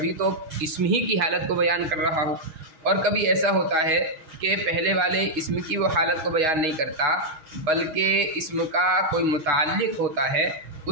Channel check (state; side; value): late; left; 6.3 ms